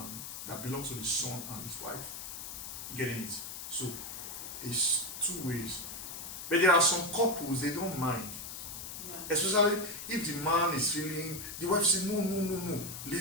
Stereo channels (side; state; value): left; noise; hiss, 8 dB below the sound